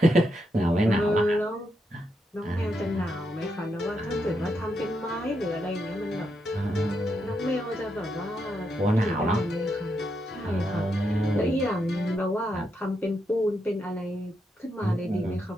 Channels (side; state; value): both; normal; correlation 0.82